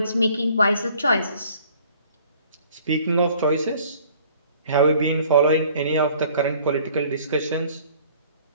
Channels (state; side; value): inverted; both; correlation -0.55